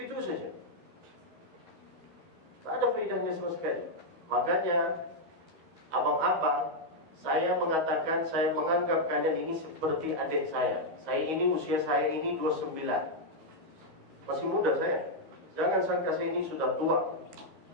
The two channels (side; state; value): left; late; 13 ms